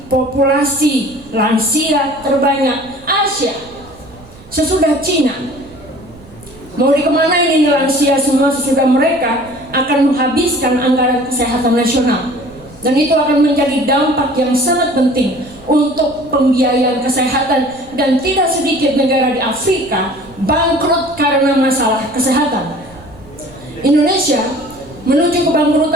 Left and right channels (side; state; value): right; noise; rumble, 23 dB below the sound